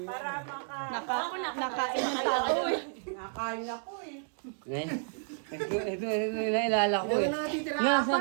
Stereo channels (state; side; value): silent; left; digital silence